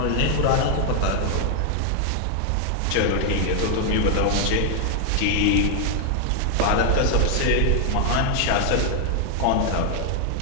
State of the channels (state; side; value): different; both; correlation 0.00